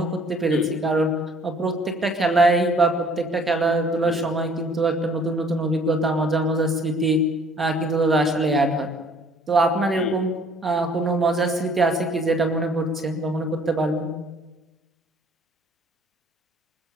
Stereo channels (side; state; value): both; normal; correlation 0.57